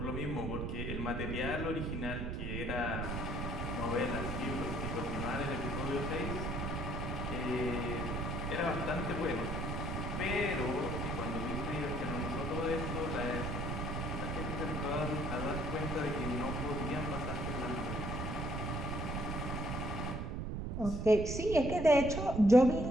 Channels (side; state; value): right; noise; rumble, 2 dB below the sound